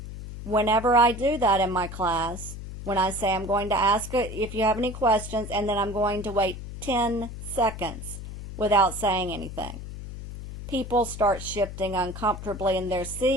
Whenever I do that in my class, when I say I'm going to ask if you have any questions, and then I'm going to wait 10 seconds without saying anything, people start shifting uncomfortably in their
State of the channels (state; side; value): noise; left; hum, 10 dB below the sound